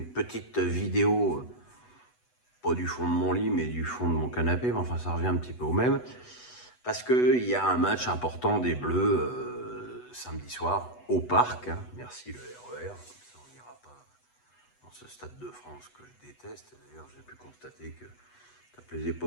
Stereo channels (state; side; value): late; right; 8.1 ms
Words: petite vidéo, pas du fond de mon lit, mais du fond de mon canapé, mais enfin ça revient un petit peu au même, parce qu'il y a un match important des Bleus samedi soir au parc, hein. Merci le RER, comme ça on n'ira pas dans ce stade de France que je déteste. D'ailleurs j'ai pu constater que ça plaisait